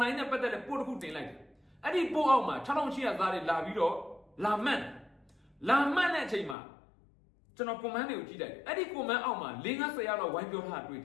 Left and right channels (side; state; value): right; drops out; at 6.6 s